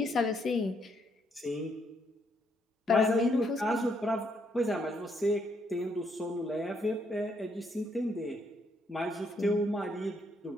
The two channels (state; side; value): normal; both; correlation 0.73